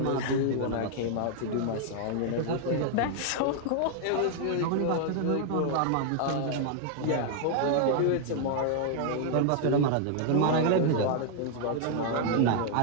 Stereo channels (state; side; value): different; both; correlation 0.00